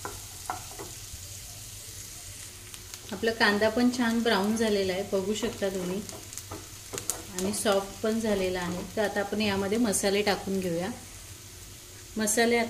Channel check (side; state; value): both; identical; correlation 1.00